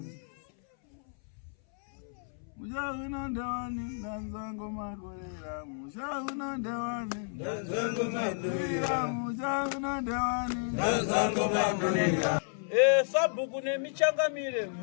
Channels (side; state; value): right; silent; 57 dB below the other